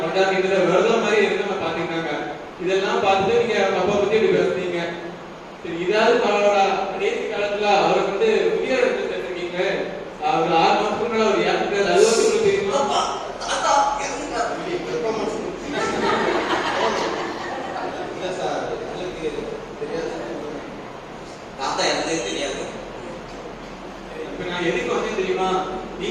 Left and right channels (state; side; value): identical; both; correlation 1.00